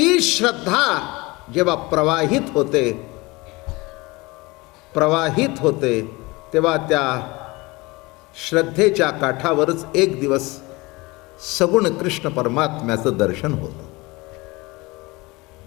श्रद्धा जेव्हा प्रवाहित होते तेव्हा त्या श्रद्धेच्या काठावरच एक दिवस सगुण कृष्ण परमात्म्याचं दर्शन होतं.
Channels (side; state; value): right; quieter; 23.3 dB